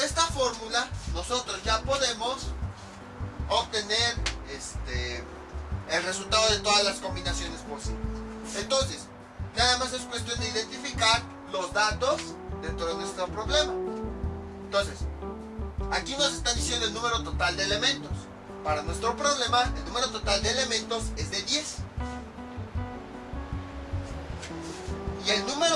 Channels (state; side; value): identical; both; correlation 1.00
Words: fórmula, nosotros ya podemos obtener el resultado de todas las combinaciones posibles. Entonces, nada más es cuestión de identificar los datos dentro de nuestro problema. Entonces, aquí nos están diciendo el número total de elementos. Para nuestro problema, el número total de elementos es de 10. Y el